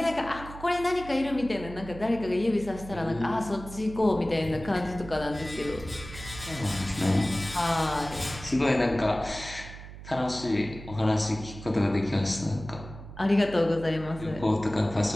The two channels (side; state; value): right; noise; hum, 14 dB below the sound